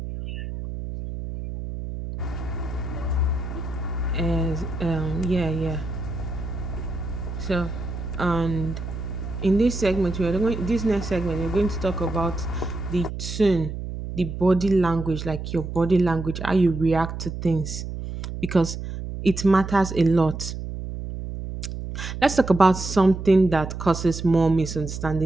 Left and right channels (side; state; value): right; noise; hum, 7 dB below the sound